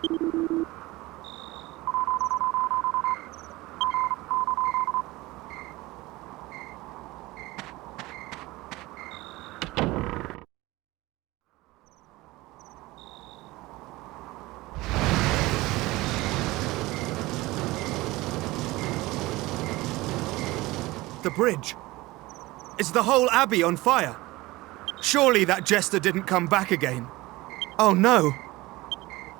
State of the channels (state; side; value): quieter; left; 20.0 dB